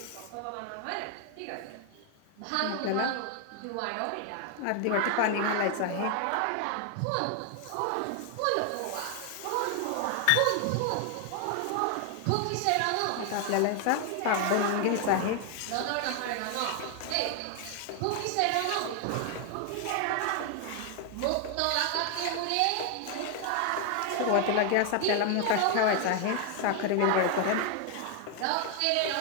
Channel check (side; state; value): both; different; correlation 0.01